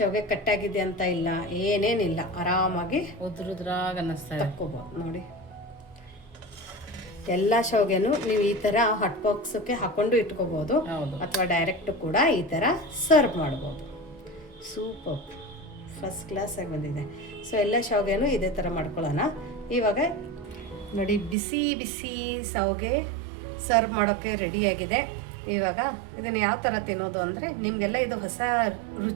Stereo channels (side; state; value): left; drops out; at 21.4 s